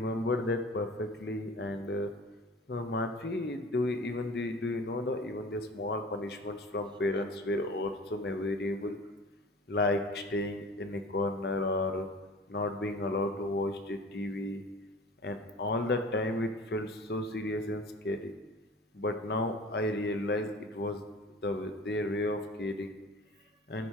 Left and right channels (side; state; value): both; normal; correlation 0.42